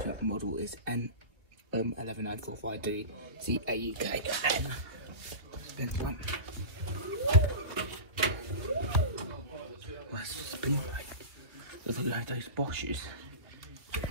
model is N11945D CAEKN. Spin one. Let's spin like look like those Bosches.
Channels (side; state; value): left; late; 2.9 ms